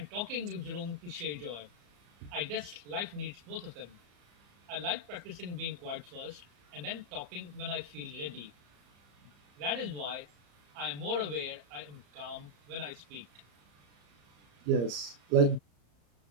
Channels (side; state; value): left; late; 34 ms